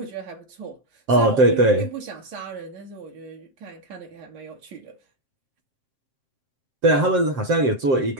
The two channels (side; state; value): left; late; 7.6 ms